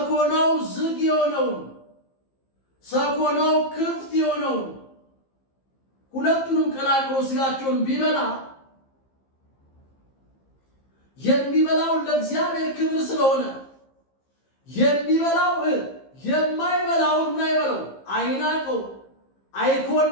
ዝግ የሆነውን ሰኮናው ክፍት የሆነውን ሁለቱንም ቀላቅሎ ስጋቸውን ቢበላ የሚበላው ለእግዚአብሔር ክብር ስለሆነ የሚበላው የማይበላውን ምን አይበለው፣ አይናቀው፣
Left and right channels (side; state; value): right; late; 15 ms